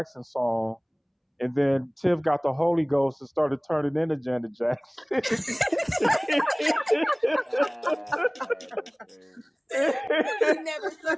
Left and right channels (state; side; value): identical; both; correlation 1.00